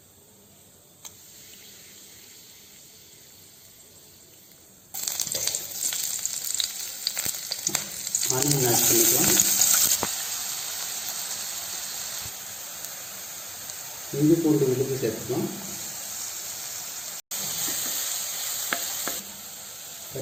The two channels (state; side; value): normal; both; correlation 0.96